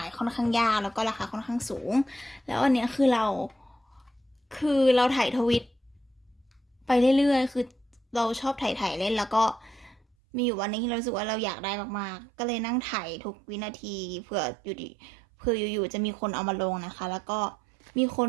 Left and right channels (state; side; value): drops out; left; at 10.0 s